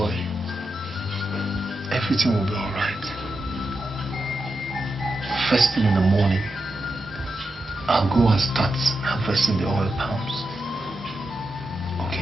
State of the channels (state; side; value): normal; both; correlation 0.87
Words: Everything will be all right. First thing in the morning, I'll go and start harvesting the oil palms.